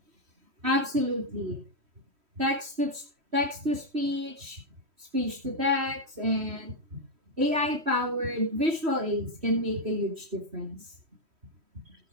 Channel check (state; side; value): late; left; 3.1 ms